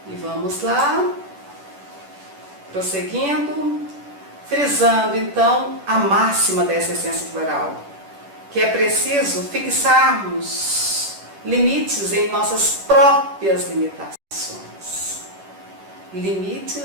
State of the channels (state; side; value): late; left; 10 ms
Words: E vamos lá, prosseguindo, frisando então a máxima dessa essência floral, que é preciso fixarmos limites em nossas próprias limitações.